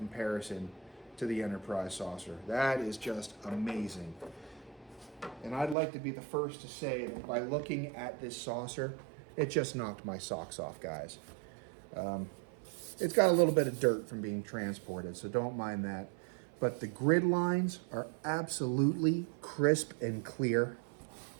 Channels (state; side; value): drops out; left; at 5.8 s